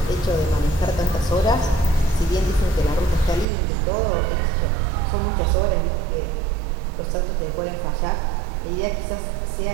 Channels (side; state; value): left; drops out; at 3.5 s